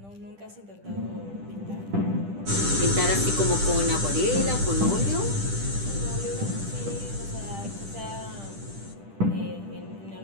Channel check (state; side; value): late; left; 10 ms